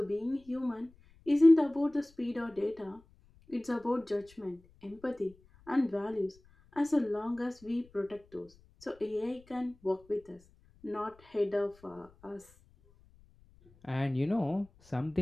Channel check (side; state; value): left; noise; rumble, 28 dB below the sound